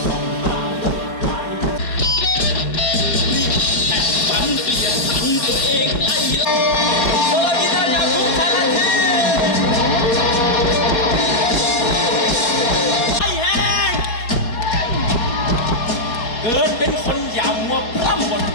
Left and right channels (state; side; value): late; right; 4.2 ms